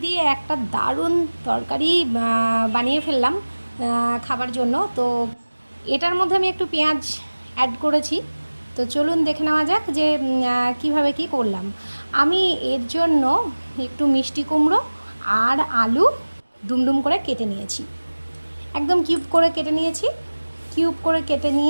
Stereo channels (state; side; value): inverted; both; correlation -1.00